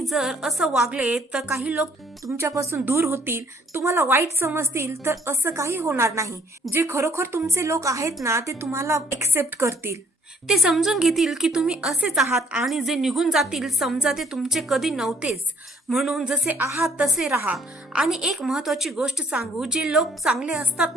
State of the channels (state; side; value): normal; both; correlation 0.62